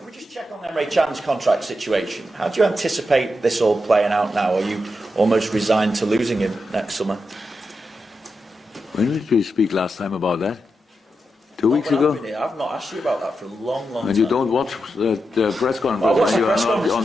we just check on Emre Can's contract situation? How do you anticipate this all playing out now? Are you almost resigned to losing him next summer? When did we speak last time about that? 2 weeks ago? I've not asked you about that for a long time. And you don't watch the press conference when you are not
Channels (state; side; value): normal; both; correlation 0.87